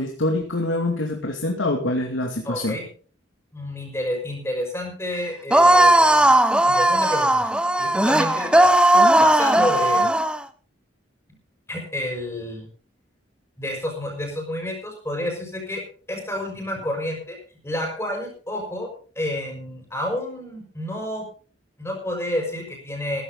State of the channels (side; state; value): both; normal; correlation 0.77